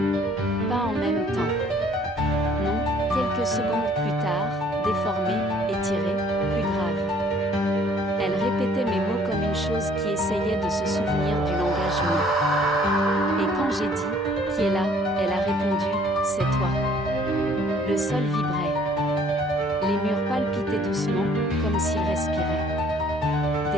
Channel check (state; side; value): normal; both; correlation 0.58